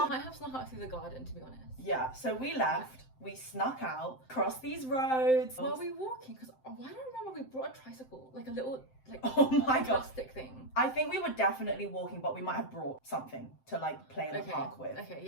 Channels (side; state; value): right; late; 7.7 ms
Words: might have snuck out through the garden, to be honest. Yeah, so we left. We snuck out, crossed these roads. Were we walking? Because I don't remember we brought a tricycle, like a little, like, oh my God, plastic thing. I think we were definitely walking, but we might have brought something to like play in the park with. Okay,